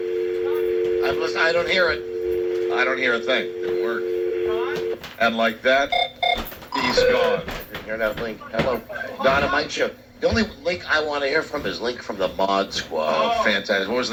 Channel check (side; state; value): both; identical; correlation 1.00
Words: listening. I don't hear it. I don't hear a thing. Didn't work. And like that, he's gone. Didn't hear that link. Hello, Donna Mike Show. The only Link I want to hear from is Link from the Mod Squad. Oh, fantastic. What was